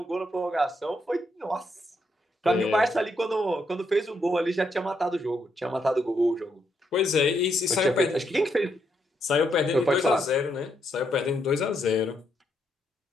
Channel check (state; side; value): normal; both; correlation 0.78